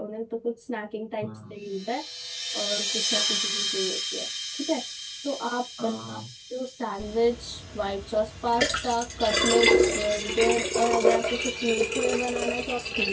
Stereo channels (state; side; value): identical; both; correlation 1.00